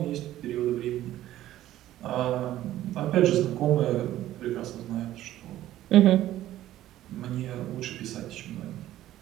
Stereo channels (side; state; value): left; quieter; 13.7 dB